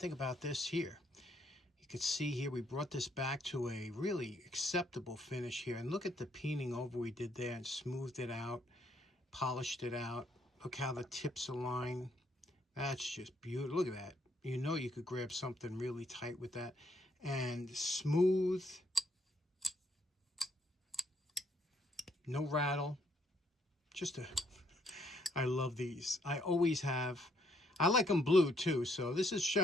about this here? You can see here we brought this back to a really acceptable finish here. And look at the peening over we did there, and smoothed it out, polished it out. Look how the tips align. That's just beautiful. Look at that. You know you could grab something really tight with that. And smooth. No rattle. I love these. I always have. I like them blue too, so this is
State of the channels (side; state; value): both; normal; correlation 0.70